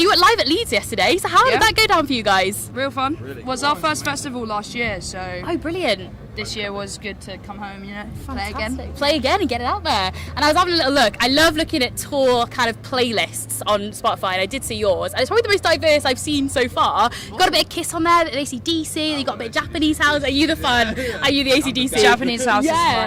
you went live at Leeds yesterday. So how did that go down for you guys? Real fun. Really was our first festival last year, so Oh, brilliant. this year was good to come home, you know, Fantastic. Play again and get it out there. And I was having a little look. I love looking at tour kind of playlists on Spotify, and I did see yours. And it's probably the most diverse I've seen so far. Got a bit of Kiss on there, AC/DC, you got a bit of Japanese house. Are you the fun? Are you the AC/DC? Japanese house is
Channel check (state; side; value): identical; both; correlation 1.00